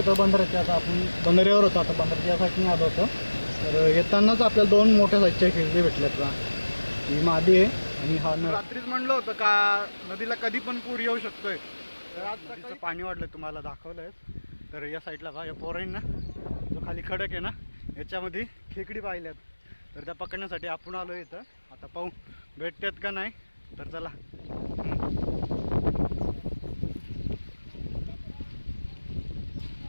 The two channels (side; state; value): both; inverted; correlation -1.00